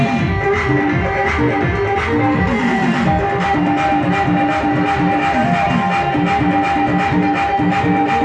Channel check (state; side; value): identical; both; correlation 1.00